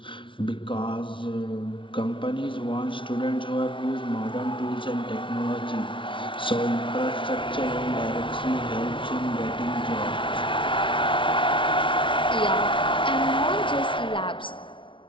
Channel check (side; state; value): right; late; 0.25 ms